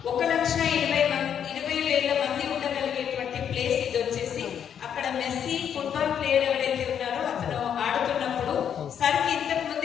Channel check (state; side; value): quieter; right; 8.6 dB